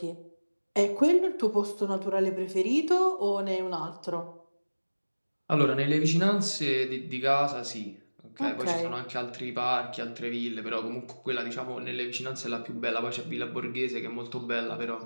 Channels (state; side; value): inverted; both; correlation -1.00